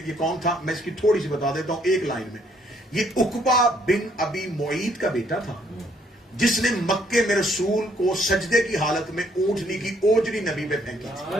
یہ کون تھا، میں اس کی تھوڑی سی بتا دیتا ہوں ایک لائن میں. یہ عقبہ بن ابی معیط کا بیٹا تھا جس نے مکے میں رسول کو سجدے کی حالت میں اونٹنی کی اوجری نبی پہ پھینکی تھی.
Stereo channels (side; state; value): both; normal; correlation 0.67